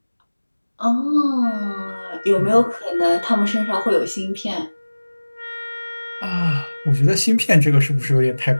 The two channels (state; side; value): inverted; both; correlation -1.00